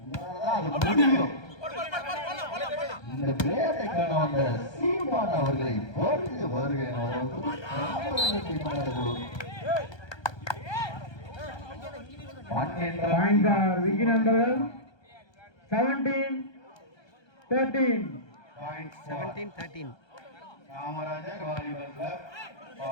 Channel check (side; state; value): right; late; 1.3 ms